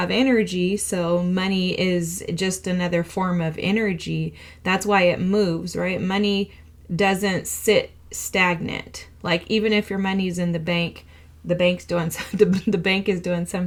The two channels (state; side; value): identical; both; correlation 1.00